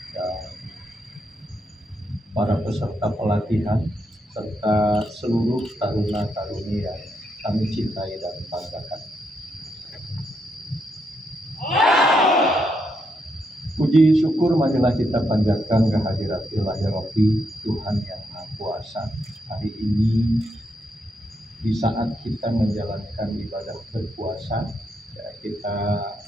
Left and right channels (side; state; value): both; normal; correlation 0.80